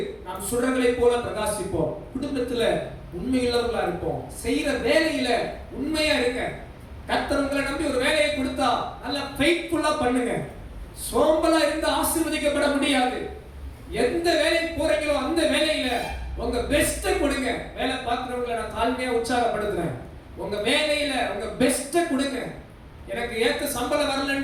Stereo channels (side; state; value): both; identical; correlation 1.00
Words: நாம் சுடர்களை போல பிரகாசிப்போம். குடும்பத்துல உண்மையுள்ளவர்களா இருப்போம். செய்யற வேலையில உண்மையா இருக்க. கர்த்தர் உங்களை நம்பி ஒரு வேலையை கொடுத்தா நல்ல ஃபெய்த்ஃபுல்லா பண்ணுங்க. சோம்பலா இருந்து ஆசீர்வதிக்கப்பட முடியாது. எந்த வேலைக்கு போறீங்களோ அந்த வேலையில உங்க பெஸ்ட கொடுங்க. வேலை பார்க்கிறவங்களை நான் தாழ்மையா உற்சாகப்படுத்துறேன். உங்க வேலையில உங்க பெஸ்ட கொடுங்க. எனக்கு ஏத்த சம்பளம்